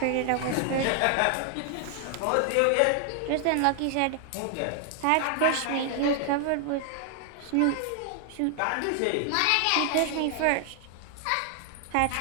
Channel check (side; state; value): both; different; correlation 0.00